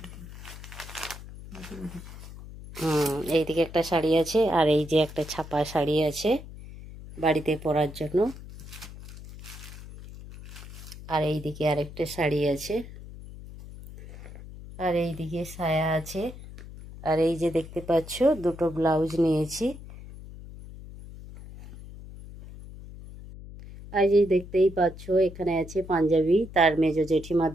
এইদিকে একটা শাড়ি আছে, আর এই যে একটা ছাপা শাড়ি আছে বাড়িতে পরার জন্য। আর এইদিকে আরেকটা শাড়ি আছে, আর এইদিকে সায়া আছে। আর এই যে দেখতে পাচ্ছ দুটো ব্লাউজ নিয়েছি। আর এই দেখতেই পাচ্ছ এখানে আছে পাঞ্জাবি, তার মেজো জেঠিমা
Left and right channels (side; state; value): left; noise; hum, 14 dB below the sound